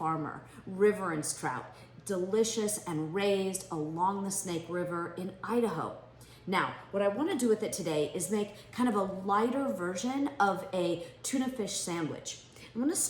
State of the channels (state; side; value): identical; both; correlation 1.00